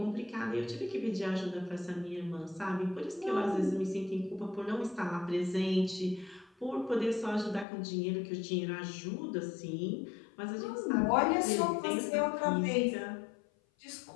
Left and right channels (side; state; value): right; drops out; at 7.7 s